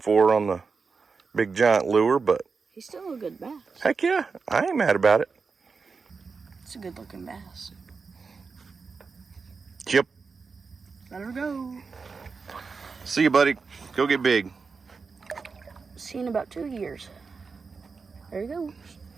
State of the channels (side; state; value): left; quieter; 4.8 dB